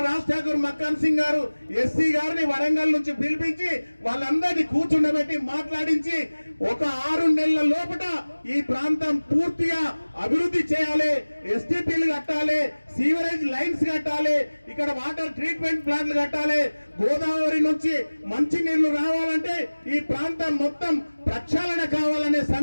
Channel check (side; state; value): both; inverted; correlation -1.00